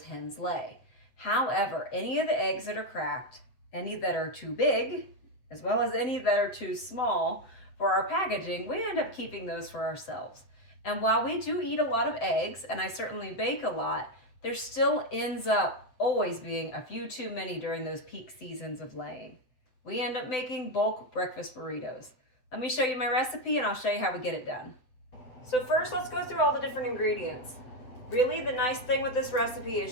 hens lay. However, any of the eggs that are cracked, any that are too big, as well as any that are too small for our packaging, we end up keeping those for ourselves. And while we do eat a lot of eggs, and I certainly bake a lot, there still ends up always being a few too many during those peak seasons of laying. We end up making bulk breakfast burritos. Let me show you my recipe and I'll show you how we get it done. So first, let's go through all the different ingredients. Really, the nice thing with this recipe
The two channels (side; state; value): right; late; 7.9 ms